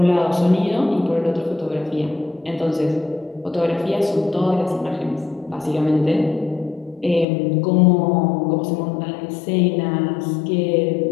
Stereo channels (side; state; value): right; drops out; at 7.2 s